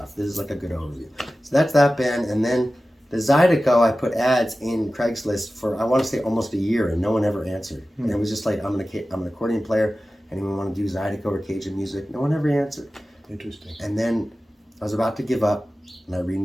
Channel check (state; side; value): normal; both; correlation 0.95